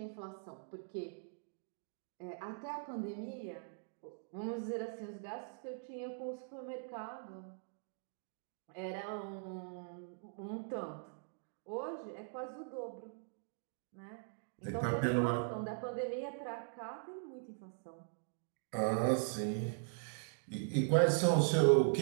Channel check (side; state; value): left; silent; digital silence